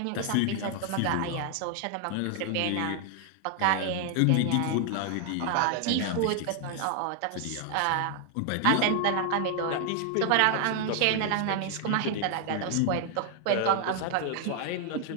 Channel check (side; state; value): both; different; correlation 0.00